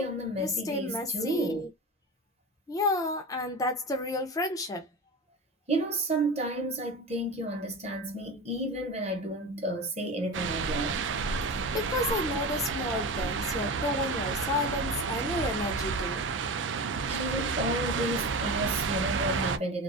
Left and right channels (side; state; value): both; normal; correlation 0.27